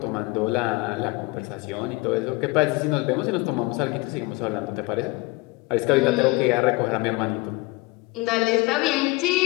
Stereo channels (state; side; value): quieter; right; 23.9 dB